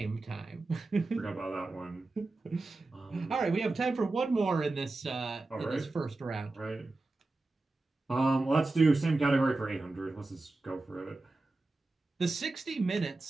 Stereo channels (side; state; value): left; quieter; 3.2 dB